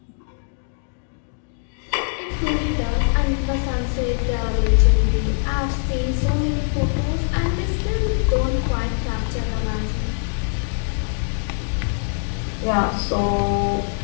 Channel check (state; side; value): silent; right; digital silence